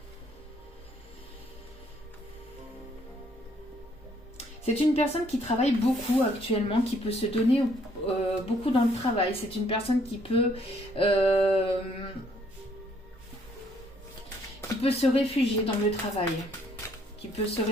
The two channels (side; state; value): both; normal; correlation 0.66